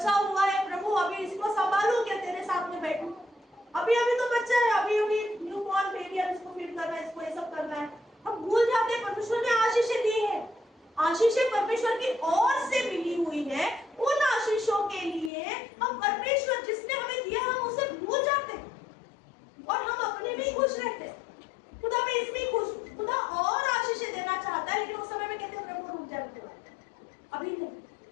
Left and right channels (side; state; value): right; drops out; at 15.3 s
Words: हुआ है प्रभु, अभी इसको संभालू क्या, तेरे साथ में बैठू, अभी तो बच्चा है, अभी न्यू बॉर्न बेबी है, इसको फीड करना है, इसको ये सब करना है। हम भूल जाते हैं परमेश्वर ने आशीषें दी है, आशीषें परमेश्वर की ओर से मिली हुई है। उन आशीषों के लिए हम परमेश्वर जिसने हमें दिया हम उसे भूल जाते हैं और हम अपने में खुश रहते हैं। खुदा मैं इसमें खुश, खुदा और आशीषें देना चाहता है, लेकिन उस समय में कहते हैं प्रभु रुक जाते हैं, अभी नहीं।